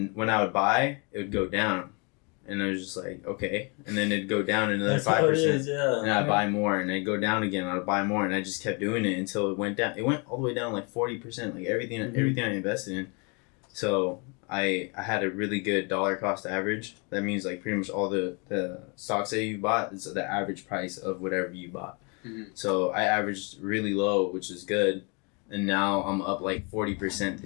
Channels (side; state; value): right; quieter; 32.5 dB